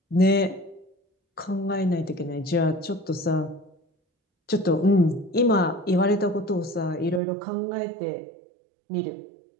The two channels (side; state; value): left; drops out; at 7.2 s